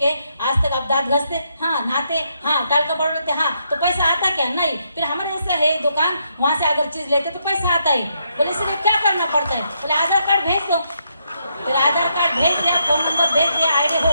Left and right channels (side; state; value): both; inverted; correlation -0.77